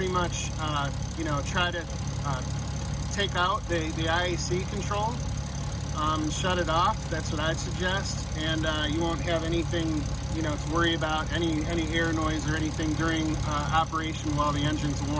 much you know, try to take out the IAC control, shut it off. That's what I'd suggest, and you won't have anything, you know, to worry about, any air noise or anything during operation while the engine's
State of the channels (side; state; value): both; identical; correlation 1.00